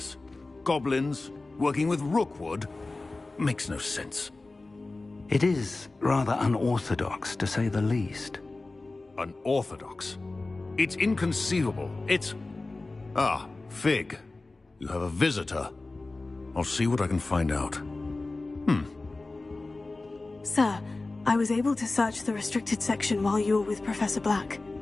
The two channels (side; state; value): right; quieter; 3.3 dB